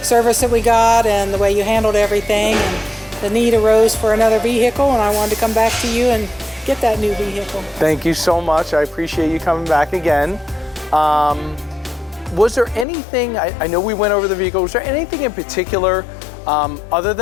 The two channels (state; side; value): drops out; right; at 12.9 s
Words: service that we got and the way you handled everything. And the need arose for another vehicle, and I wanted to come back to you and get that new vehicle. Thank you so much. I appreciate you coming back again. Was there anything, I know we went over the vehicle, was there anything in particular, other